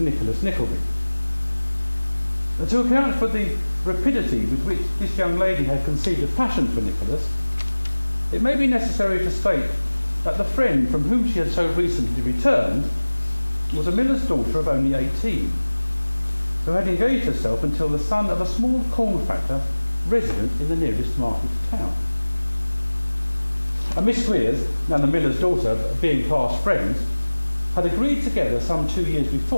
Nicholas Nickleby. To account for the rapidity with which this young lady had conceived a passion for Nicholas, it may be necessary to state that the friend from whom she had so recently returned was a miller's daughter of only 18, who had engaged herself until the son of a small corn factor resident in the nearest market town. And Miss Squeers and the miller's daughter, being past friends, had agreed together some 2 years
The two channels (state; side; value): inverted; both; correlation -1.00